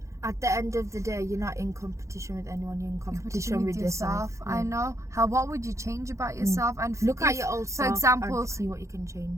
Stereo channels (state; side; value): late; left; 0.15 ms